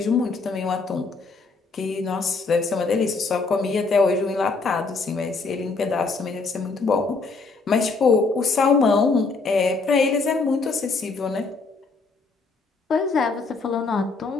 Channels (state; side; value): quieter; right; 4.1 dB